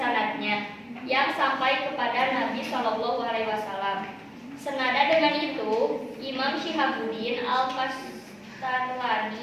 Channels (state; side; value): identical; both; correlation 1.00